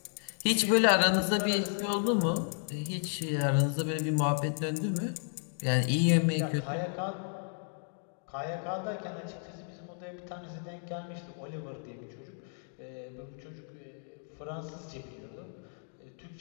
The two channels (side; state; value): right; silent; 56 dB below the other